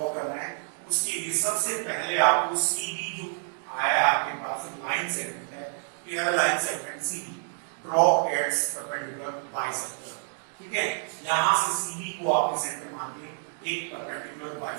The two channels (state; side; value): silent; left; digital silence